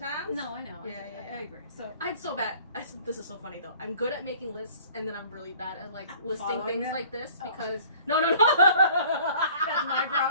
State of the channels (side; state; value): both; inverted; correlation -0.52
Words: No, I know. I agree. So I'm so bad. This is so funny though. I'm good at making lists, and then I'm really bad at like listing things like this because no. That's my